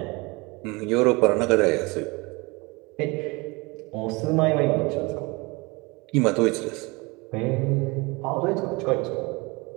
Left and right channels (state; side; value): quieter; left; 25.9 dB